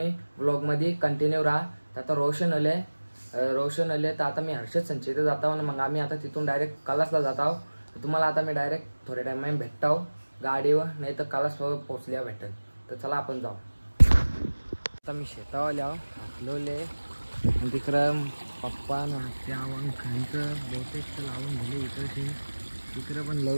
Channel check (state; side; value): inverted; both; correlation -1.00